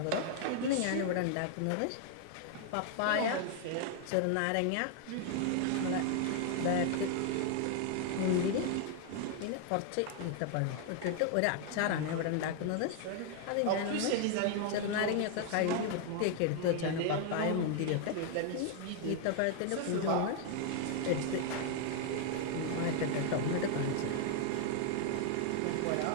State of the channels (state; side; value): different; both; correlation 0.00